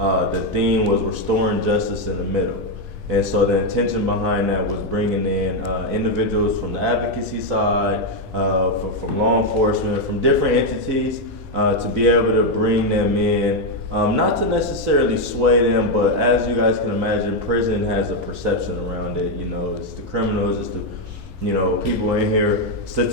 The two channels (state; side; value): normal; both; correlation 0.04